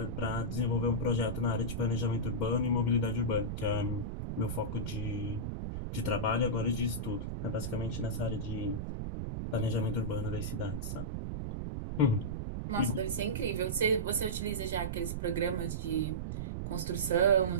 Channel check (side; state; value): right; noise; rumble, 4 dB below the sound